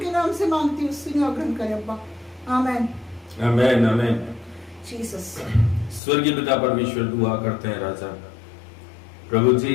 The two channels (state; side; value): drops out; right; at 6.0 s